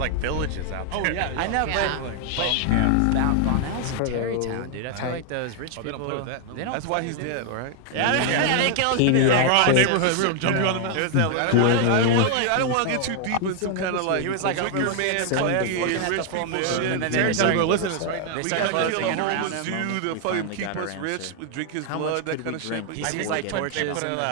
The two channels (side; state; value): both; different; correlation 0.00